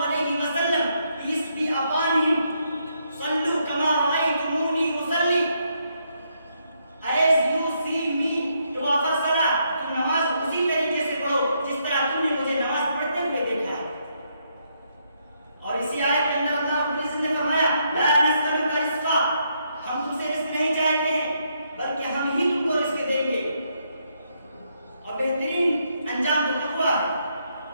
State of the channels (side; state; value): both; inverted; correlation -0.76